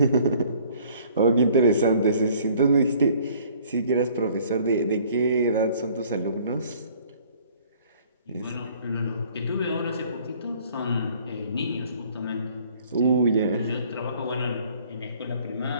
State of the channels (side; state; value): both; inverted; correlation -0.56